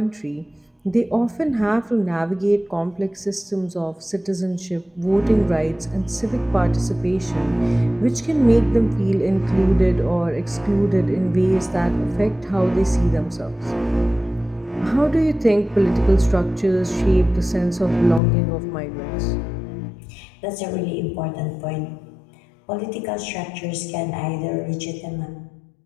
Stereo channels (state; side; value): drops out; right; at 18.2 s